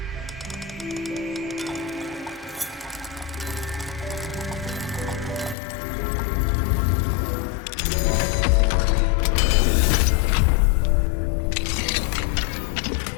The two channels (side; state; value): right; drops out; at 5.6 s